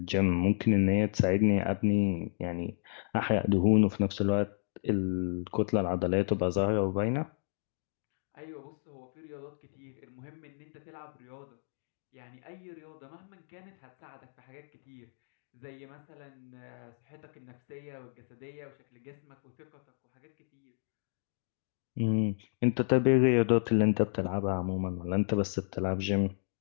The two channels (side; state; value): right; silent; digital silence